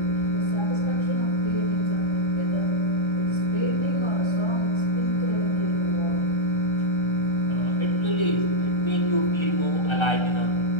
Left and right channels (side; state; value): right; late; 1.3 ms